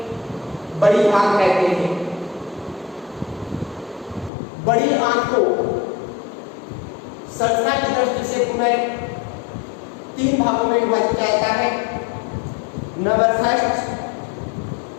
बड़ी आंत कहते हैं। बड़ी आंत को संरचना की दृष्टि से पुनः 3 भागों में विभाजित किया जाता है। नंबर फर्स्ट,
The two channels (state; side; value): drops out; right; at 4.3 s